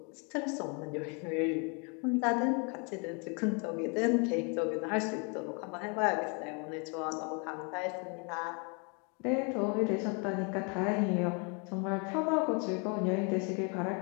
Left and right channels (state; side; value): quieter; right; 35.3 dB